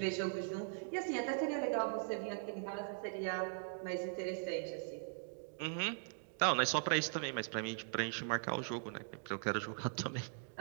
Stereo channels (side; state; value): left; silent; digital silence